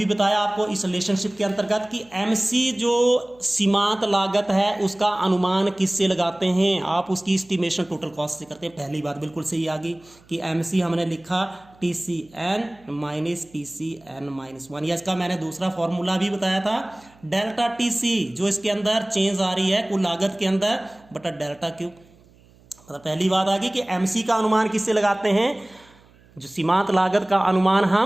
बताया आपको इस रिलेशनशिप के अंतर्गत कि एमसी जो सीमांत लागत है उसका अनुमान किससे लगाते हैं? आप उसकी एस्टिमेशन टोटल कॉस्ट से करते हैं। पहली बात बिल्कुल सही आ गई कि एमसी हमने लिखा TC N minus TC N minus 1, या इसका मैंने दूसरा फॉर्मूला भी बताया था, डेल्टा टीसी जो इसके अंदर चेंज आ रही है कुल लागत के अंदर बटा डेल्टा क्यू। मतलब पहली बात आ गई कि एमसी का अनुमान किससे लगाते हैं? जो सीमांत लागत का अनुमान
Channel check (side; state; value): right; noise; hum, 28 dB below the sound